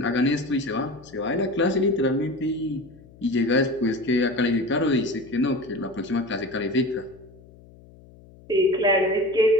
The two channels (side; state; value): left; noise; hum, 23 dB below the sound